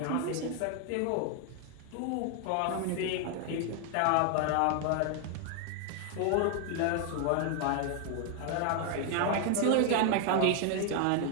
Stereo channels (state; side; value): different; both; correlation 0.00